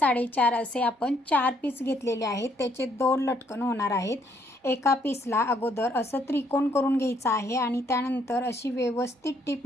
असे आपण 4 पीस घेतलेले आहेत. त्याचे 2 लटकन होणार आहेत. एका पीसला अगोदर असं त्रिकोण करून घ्यायचं आहे आणि त्यानंतर अशी व्यवस्थित टिप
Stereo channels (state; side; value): normal; both; correlation 0.69